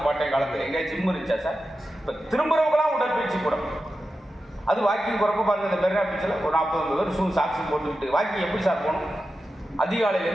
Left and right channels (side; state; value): both; normal; correlation 0.91